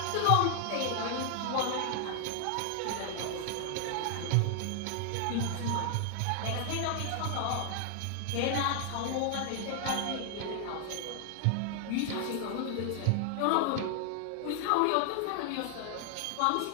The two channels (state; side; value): different; both; correlation 0.00